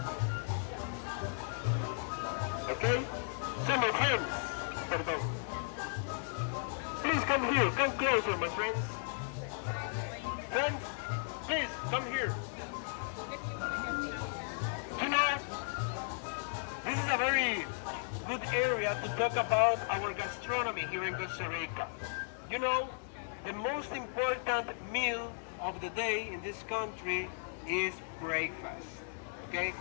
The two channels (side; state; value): right; silent; digital silence